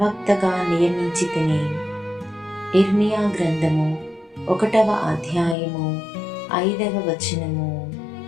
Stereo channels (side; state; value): right; drops out; at 5.6 s